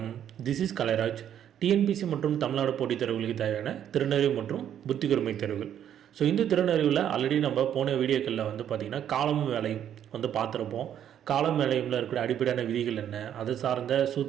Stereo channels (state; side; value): quieter; left; 9.9 dB